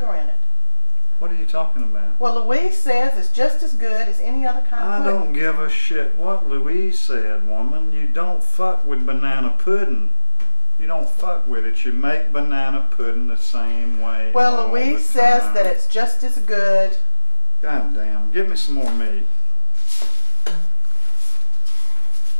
in it. What are you talking about? Well, Louise says it's just as good as any other kind I of pudding. don't give a shit what Louise said, woman. You don't fuck with banana pudding. You don't fuck with it. You make banana pudding the same way. Well, all Louise the says time. that it's just as good. God damn. Give me some more meat.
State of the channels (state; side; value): inverted; both; correlation -1.00